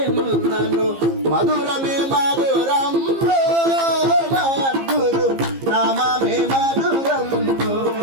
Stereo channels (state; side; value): late; left; 15 ms